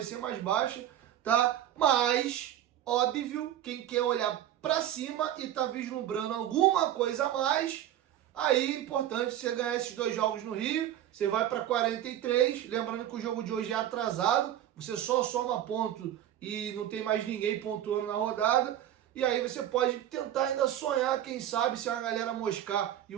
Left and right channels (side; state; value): left; quieter; 11.6 dB